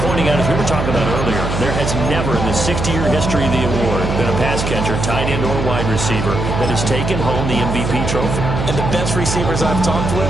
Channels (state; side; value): noise; right; hum, 2 dB below the sound